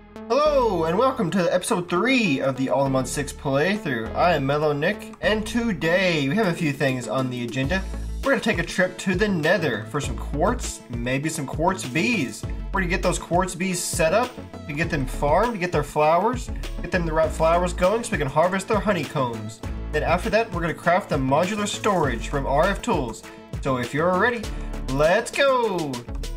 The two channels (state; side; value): identical; both; correlation 1.00